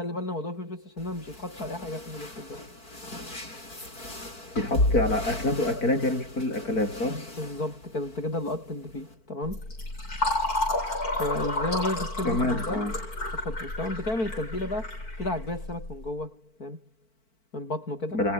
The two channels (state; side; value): late; right; 4.5 ms